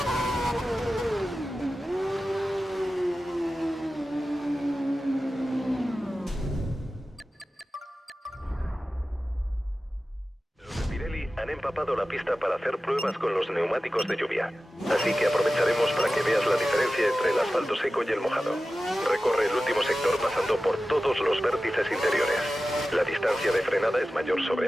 Los de Pirelli han empapado la pista para hacer pruebas con los neumáticos de lluvia. Así que aprovecharemos para que veas la diferencia entre el asfalto seco y el mojado. Recorre el último sector pasando por todos los vértices interiores. La distancia de frenada es mayor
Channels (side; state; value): both; normal; correlation 0.95